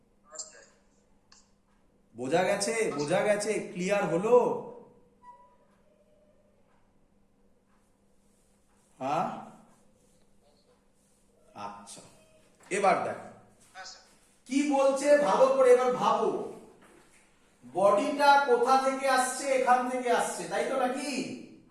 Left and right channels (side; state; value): both; identical; correlation 1.00